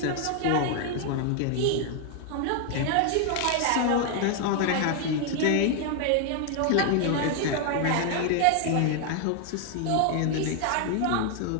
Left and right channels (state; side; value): different; both; correlation 0.00